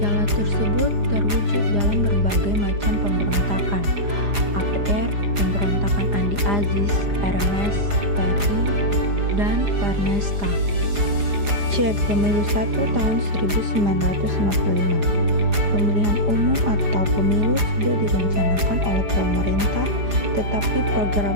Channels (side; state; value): left; late; 4.9 ms